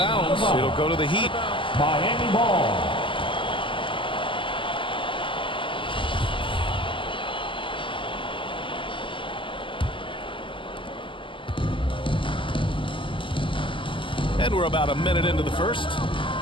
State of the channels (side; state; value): right; late; 0.25 ms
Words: It'll go to the Heat. Miami ball. And we're about a minute into the first.